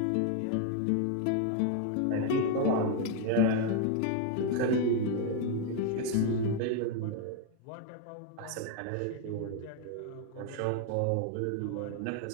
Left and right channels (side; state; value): both; different; correlation 0.00